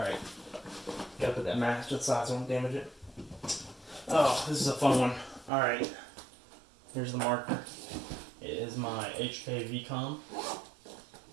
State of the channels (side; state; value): left; drops out; at 5.5 s